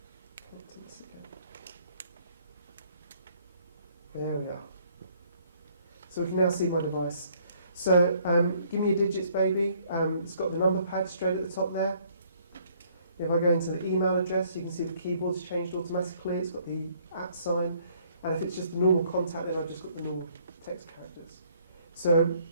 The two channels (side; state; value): both; inverted; correlation -0.64